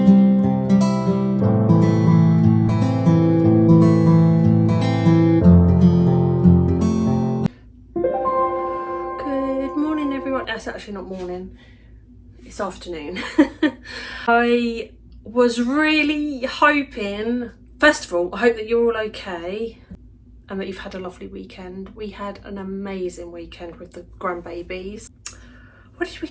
morning everyone. It's actually not morning, it's afternoon. I was really hoping, first of all, I hope that you're all okay and that you've had a lovely weekend. We had an amazing weekend with the grandbabies. What did we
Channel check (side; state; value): both; identical; correlation 1.00